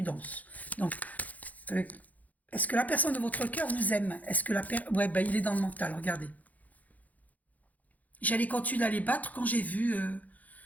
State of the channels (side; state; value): right; late; 0.077 ms